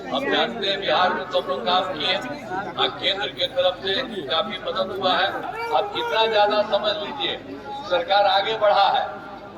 हम जानते हैं बिहार में तो हम लोग काम किए, केंद्र की तरफ से काफी मदद हुआ है। अब कितना ज्यादा समझ लीजिए, सरकार आगे बढ़ा है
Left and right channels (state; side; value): identical; both; correlation 1.00